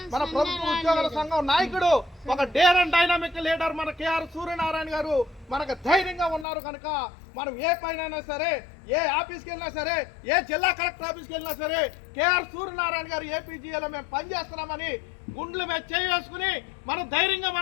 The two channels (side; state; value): right; drops out; at 6.5 s